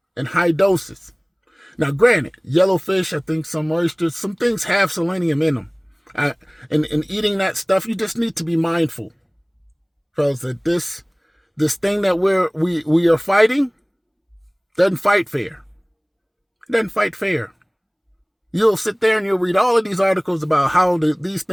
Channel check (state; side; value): identical; both; correlation 1.00